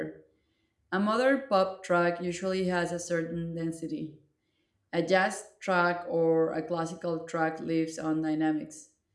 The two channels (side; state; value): both; identical; correlation 1.00